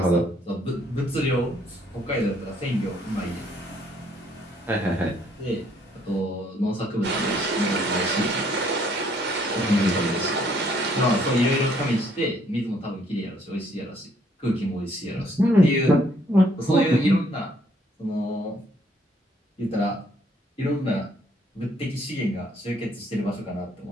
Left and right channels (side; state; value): both; normal; correlation 0.66